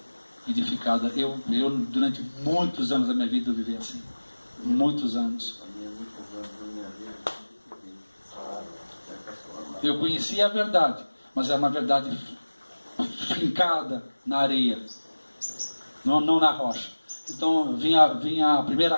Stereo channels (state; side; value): inverted; both; correlation -1.00